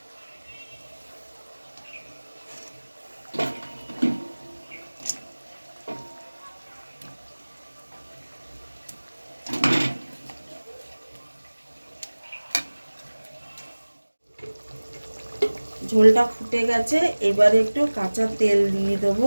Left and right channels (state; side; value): inverted; both; correlation -1.00